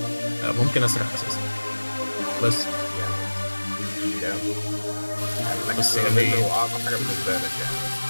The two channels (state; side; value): inverted; both; correlation -1.00